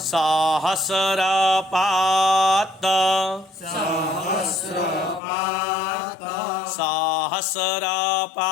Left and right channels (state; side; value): drops out; right; at 5.2 s